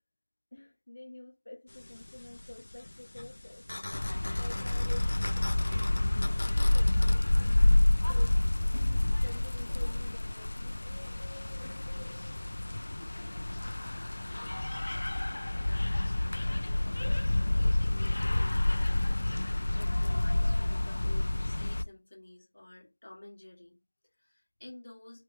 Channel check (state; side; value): inverted; both; correlation -1.00